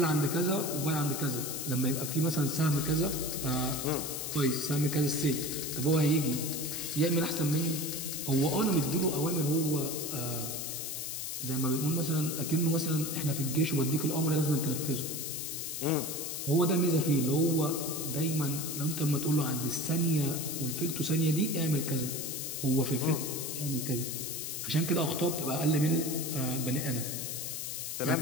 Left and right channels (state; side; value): noise; left; hiss, 4 dB below the sound